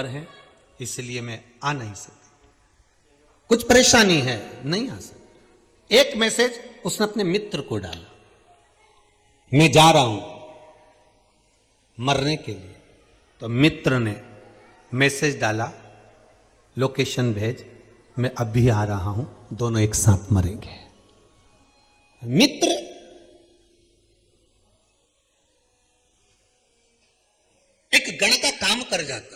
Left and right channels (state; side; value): identical; both; correlation 1.00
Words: हैं इसलिए मैं आ नहीं सकती, कुछ परेशानी है, नहीं आ सकती। एक मैसेज उसने अपने मित्र को डाला, मैं जा रहा हूं मरने के लिए। तो मित्र ने मैसेज डाला, लोकेशन भेज, मैं अभी आ रहा हूं, दोनों एक साथ मरेंगे। मित्र एक गण का काम कर जाता।